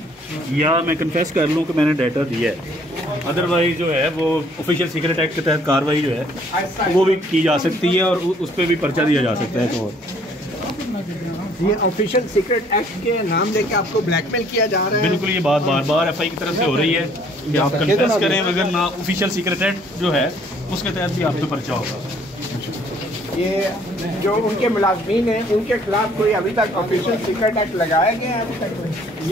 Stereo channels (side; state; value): left; noise; hum, 30 dB below the sound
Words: या मैं कन्फेस कर लूँ कि मैंने डाटा दिया है। अदरवाइज जो है वो ऑफिशियल सीक्रेट एक्ट के तहत कार्रवाई जो है वो भी की जा सकती है और उस पर भी पर्चा दिया जा सकता है। तो ये ऑफिशियल सीक्रेट एक्ट के नाम लेके आपको ब्लैकमेल किया जा रहा है? बिल्कुल, ये बात बार बार एफआई की तरफ से हो रही है कि आप कन्फेस करें, अगर ना ऑफिशियल सीक्रेट एक्ट जो है उसके तहत भी आप पे पर्चा होगा। ये जो उनके मुलाजमीन हैं उनके खिलाफ कोई अभी तक ऑफिशियल सीक्रेट एक्ट लगाया गया है अभी तक?